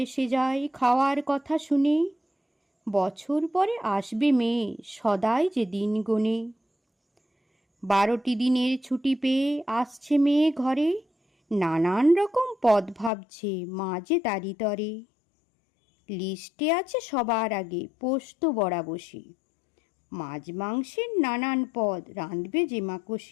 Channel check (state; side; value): drops out; right; at 13.1 s